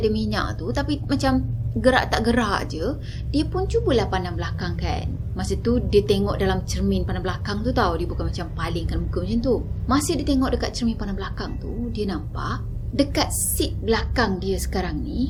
minyak tu, tapi macam gerak tak gerak je, dia pun cubalah pandang belakang kan. Masa tu dia tengok dalam cermin pandang belakang tu tau, dia bukan macam palingkan muka macam tu. Masa dia tengok dekat cermin pandang belakang tu, dia nampak dekat seat belakang dia sekarang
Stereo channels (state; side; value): identical; both; correlation 1.00